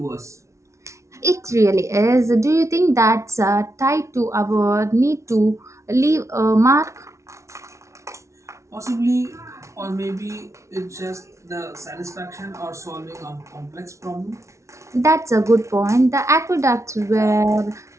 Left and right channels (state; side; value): late; left; 0.14 ms